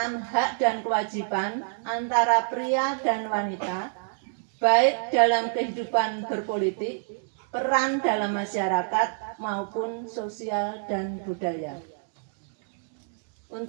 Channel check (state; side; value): silent; left; digital silence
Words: hak dan kewajiban antara pria dan wanita, baik dalam kehidupan berpolitik, peran dalam masyarakat, maupun sosial dan budaya.